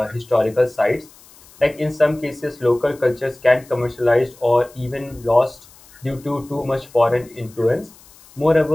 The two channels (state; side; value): noise; left; hiss, 25 dB below the sound